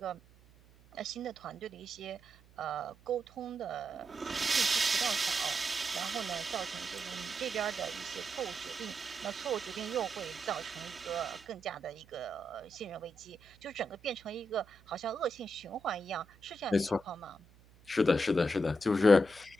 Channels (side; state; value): right; noise; hum, 26 dB below the sound